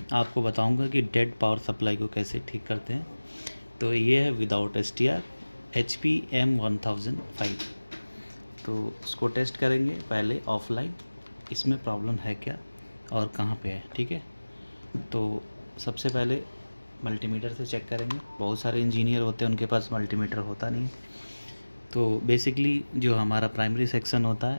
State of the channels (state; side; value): inverted; both; correlation -1.00